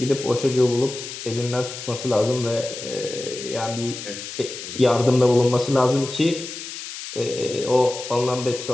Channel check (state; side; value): noise; left; hiss, 10 dB below the sound